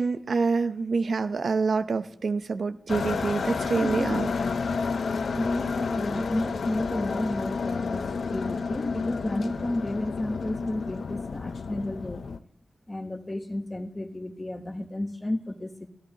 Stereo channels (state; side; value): normal; both; correlation 0.90